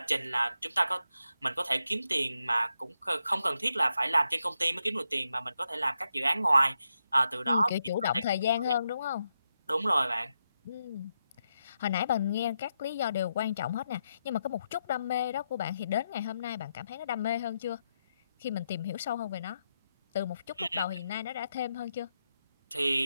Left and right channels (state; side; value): inverted; both; correlation -0.84